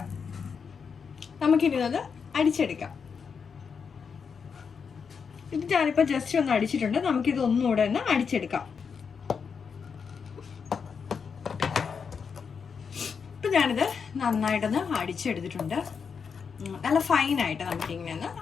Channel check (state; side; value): quieter; right; 6.1 dB